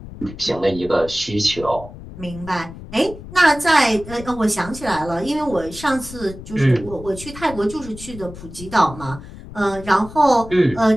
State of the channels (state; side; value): noise; left; rumble, 14 dB below the sound